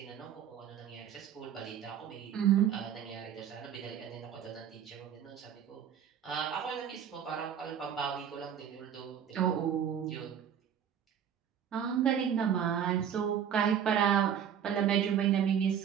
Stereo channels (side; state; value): left; quieter; 8.8 dB